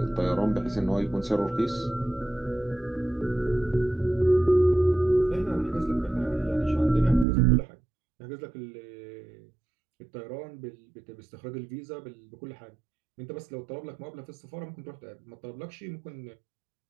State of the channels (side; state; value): left; drops out; at 7.2 s